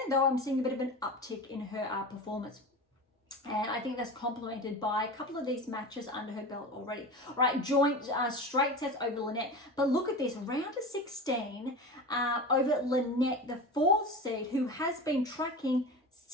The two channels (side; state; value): both; normal; correlation 0.29